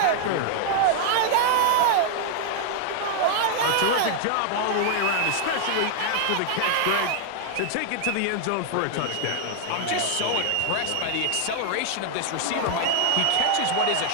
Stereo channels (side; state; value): both; different; correlation 0.00